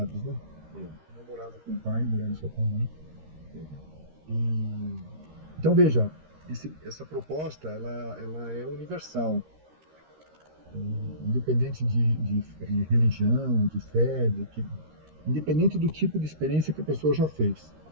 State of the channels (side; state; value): left; late; 13 ms